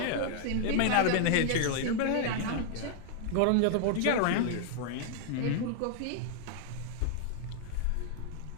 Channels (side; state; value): both; different; correlation 0.00